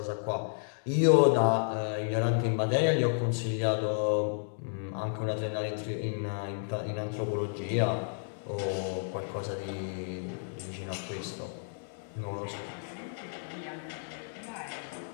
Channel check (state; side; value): silent; right; digital silence